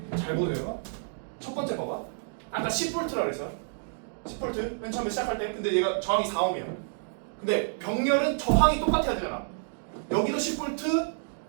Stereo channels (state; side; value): silent; left; digital silence